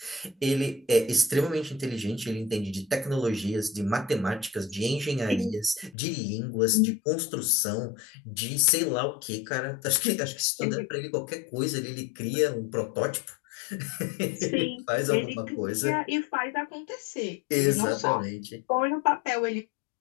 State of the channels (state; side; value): drops out; right; at 6.0 s